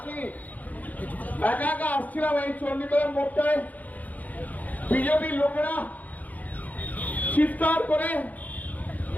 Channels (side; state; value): right; late; 0.078 ms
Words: একা একা আসছিলাম এই চণ্ডীতলার মোড়টায়। বিজেপির লোকেরা চিৎকার করে